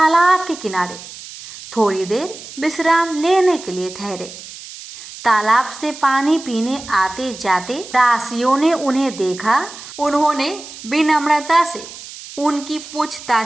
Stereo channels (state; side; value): noise; right; hiss, 15 dB below the sound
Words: के किनारे थोड़ी देर विश्राम लेने के लिए ठहरे। तालाब से पानी पीने आते जाते दासियों ने उन्हें देखा। उन्होंने विनम्रता से उनकी